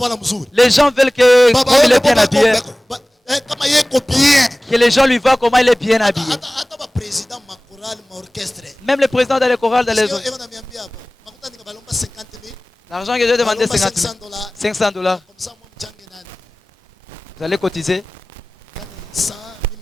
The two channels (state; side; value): normal; both; correlation 0.98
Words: Les gens veulent que comme il est bien habillé, que les gens lui voient comment il est bien habillé. Même le président dans les chorales, dans les autres. L'argent que j'ai demandé, 50 000. 500 $. Vous allez cotiser.